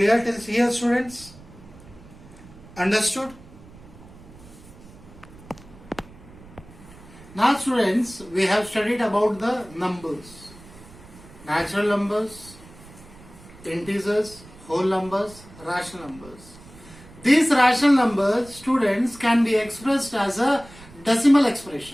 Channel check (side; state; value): right; noise; rumble, 21 dB below the sound